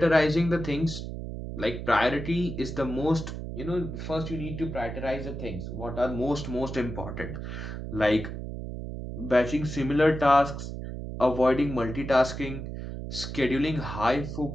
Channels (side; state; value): right; noise; hum, 7 dB below the sound